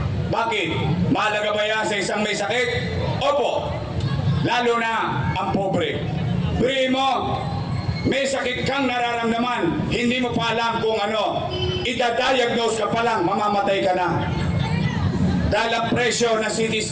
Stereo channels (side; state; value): both; identical; correlation 1.00